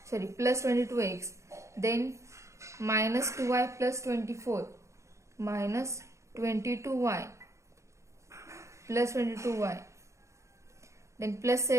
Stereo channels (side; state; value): left; late; 0.14 ms